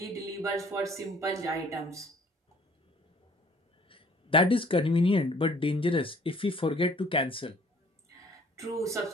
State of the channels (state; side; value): normal; both; correlation 0.56